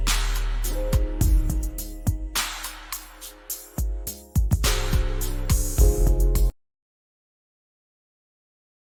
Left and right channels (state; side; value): identical; both; correlation 1.00